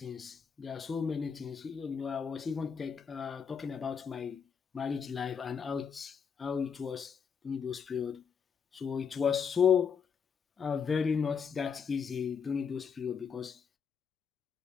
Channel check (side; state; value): right; quieter; 6.6 dB